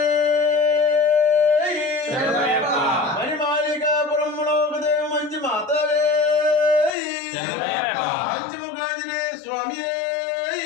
మణిమాళికాపురమ్మలో దేవ మంచి మాతవే పంచముఖాంజనేయ స్వామి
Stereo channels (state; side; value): drops out; right; at 7.0 s